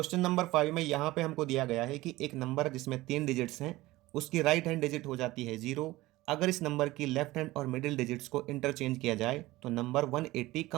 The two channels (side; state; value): left; quieter; 18.5 dB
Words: नंबर 5 में यहाँ पे हमको दिया गया है कि एक नंबर जिसमें 3 डिजिट्स हैं उसकी राइट हैंड डिजिट हो जाती है 0। अगर इस नंबर की लेफ्ट हैंड और मिडिल डिजिट्स को इंटरचेंज किया जाए तो नंबर 180